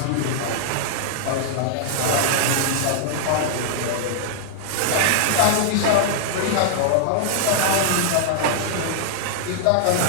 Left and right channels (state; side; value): different; both; correlation -0.01